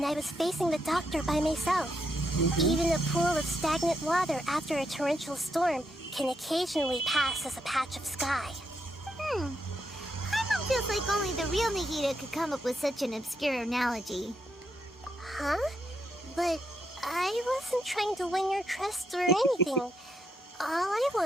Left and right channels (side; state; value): both; normal; correlation 0.79